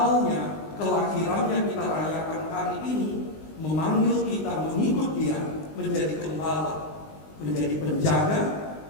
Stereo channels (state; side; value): late; right; 19 ms